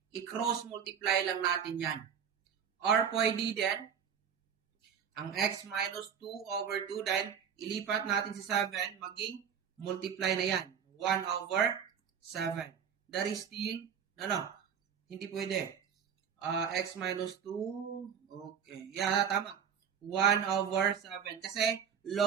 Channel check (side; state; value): left; quieter; 7.8 dB